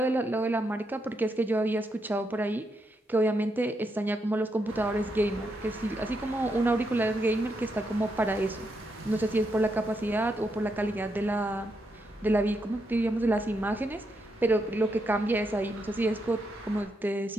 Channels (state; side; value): normal; both; correlation 0.81